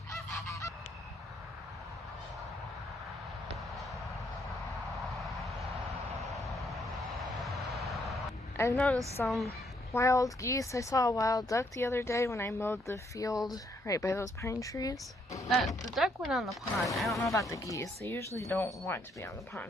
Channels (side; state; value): both; normal; correlation 0.72